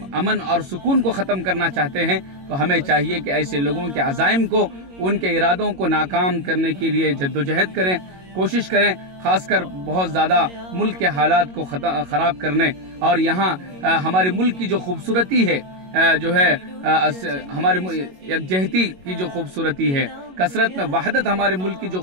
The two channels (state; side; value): late; left; 22 ms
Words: अमन और सुकून को ख़त्म करना चाहते हैं। तो हमें चाहिए कि ऐसे लोगों के अज़ाइम को, उनके इरादों को नाकाम करने के लिए जद्दोजहद करें, कोशिश करें, खासकर बहुत ज़्यादा मुल्क के हालात को ख़राब करने और यहाँ हमारे मुल्क की जो खूबसूरती है, जो है हमारे यकजहती की जो खूबसूरती है, कसरत में वहदत हमारे मुल्क की जो